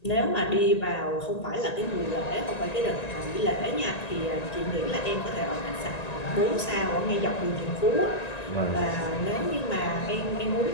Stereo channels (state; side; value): late; right; 1.9 ms